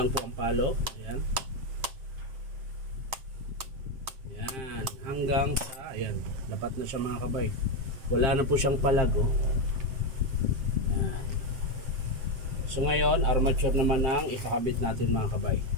po ang palo. Ayan. Ayan. Hanggang sa, ayan, dapat na siya mga kabay. Wala na po siyang palago. Ayan. So ngayon, armature naman ang ikakabit natin mga kabay.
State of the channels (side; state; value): left; late; 7.6 ms